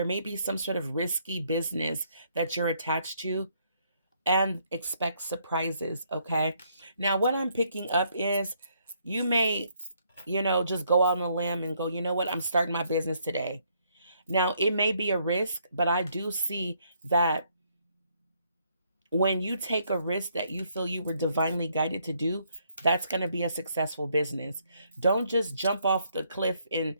may be some sort of risky business that you're attached to, and expect surprises, okay? Now, what I'm picking up is you may, just go out on a limb and go, you know what, I'm starting my business today. Now, it may be a risk, but I do see that when you take a risk that you feel you were divinely guided to do, that's going to be a successful business. Don't just jump off the cliff and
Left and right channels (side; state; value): both; inverted; correlation -0.71